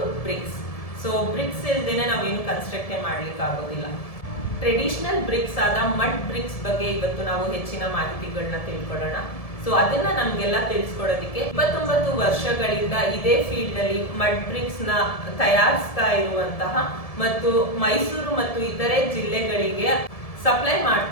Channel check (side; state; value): right; late; 1.7 ms